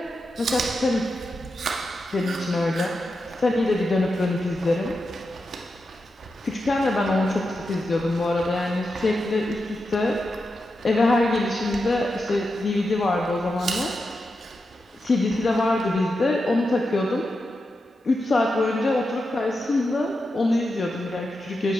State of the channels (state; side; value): normal; both; correlation 0.88